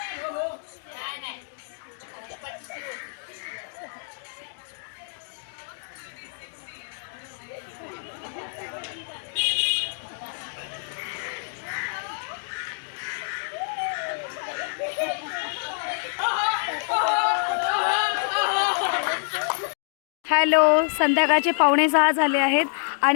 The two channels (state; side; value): silent; right; digital silence